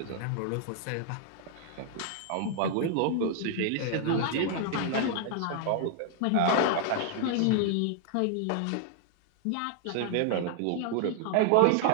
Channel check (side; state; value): both; different; correlation 0.00